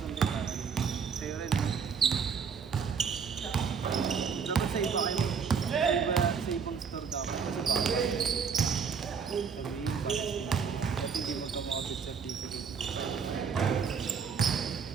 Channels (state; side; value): quieter; left; 6.3 dB